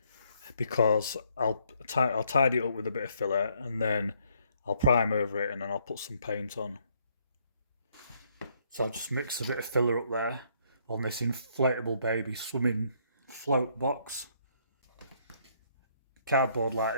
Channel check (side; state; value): both; inverted; correlation -0.70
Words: because I'll tidy it up with a bit of filler and then I'll prime over it and then I'll put some paint on. So I'll just mix a bit of filler up there on this inflatable baby swimming float box. Cardboard like